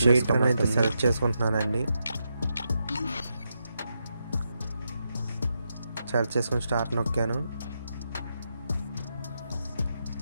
అయితే సెలెక్ట్ చేసుకుంటున్నానండి. సెలెక్ట్ చేసుకుని స్టార్ట్ నొక్కాను.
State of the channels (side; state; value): both; inverted; correlation -0.84